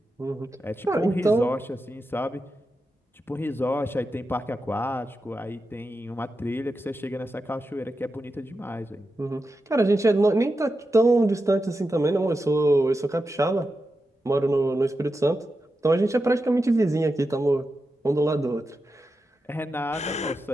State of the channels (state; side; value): normal; both; correlation 0.89